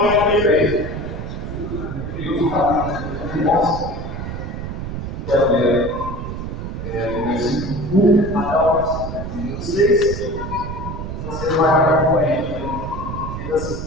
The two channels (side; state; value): right; noise; rumble, 6 dB below the sound